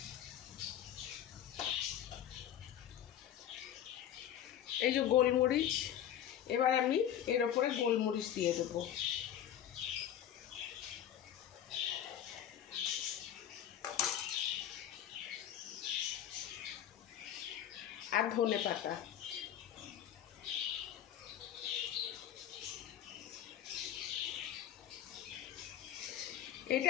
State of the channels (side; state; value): right; quieter; 10.6 dB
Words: এই যে গোলমরিচ, এবার আমি এর উপরে গোলমরিচ দিয়ে দেবো। আর ধনে পাতা।